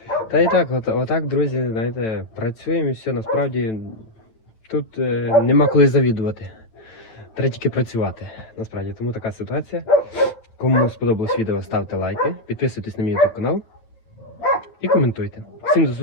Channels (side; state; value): right; late; 9.3 ms